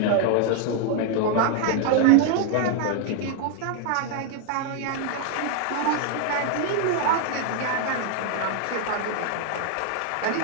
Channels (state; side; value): different; both; correlation 0.00